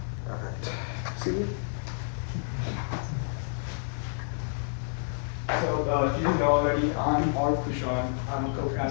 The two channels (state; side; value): silent; right; digital silence